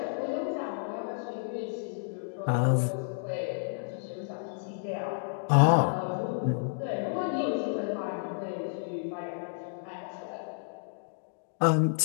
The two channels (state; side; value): silent; right; digital silence